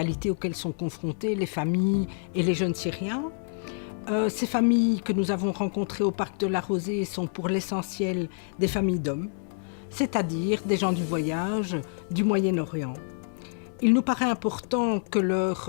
auxquelles sont confrontées les familles et les jeunes Syriens. Ces familles que nous avons rencontrées au parc de la Rosée sont pour l'essentiel des familles d'hommes, c'est-à-dire des gens du voyage du Moyen-Orient. Il nous paraît important que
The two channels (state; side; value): silent; right; 60 dB below the other